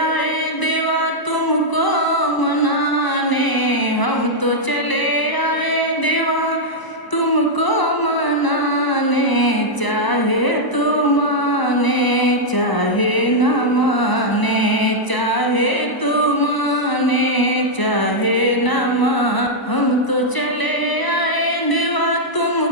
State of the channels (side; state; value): right; late; 1.0 ms